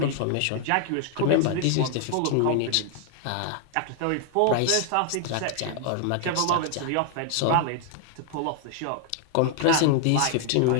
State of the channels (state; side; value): different; both; correlation 0.00